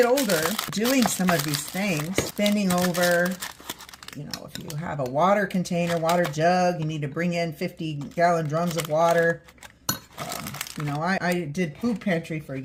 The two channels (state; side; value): identical; both; correlation 1.00